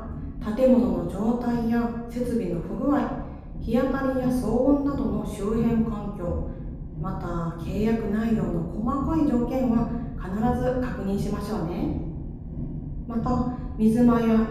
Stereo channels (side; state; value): both; identical; correlation 1.00